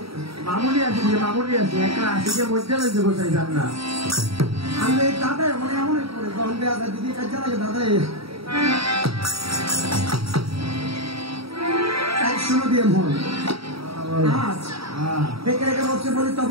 মামুলি আছে একটা আসিকে মধ্যে রয়েছে বসাই যান না আমি দাদা মানে এমন করে যখন দেওয়া যায় দিদি কাজে লাগে দাদা তাই শুনো দিয়ে মন আজ দেখে রেখে বলছে বলি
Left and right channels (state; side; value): late; left; 0.76 ms